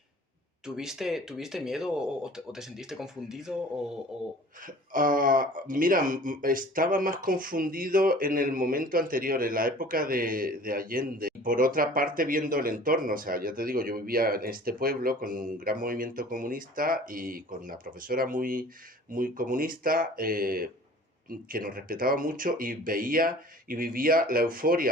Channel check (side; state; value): both; normal; correlation 0.46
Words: ¿tuviste miedo o te sentiste confundido Mira, estaba más confundido en el momento anterior, en la época de Allende. Y por otra parte, viendo el entorno, o sea, ya te digo, yo vivía en este pueblo con un gran movimiento comunista y con una profesora muy comunista que nos respetaba mucho y veía y vivía la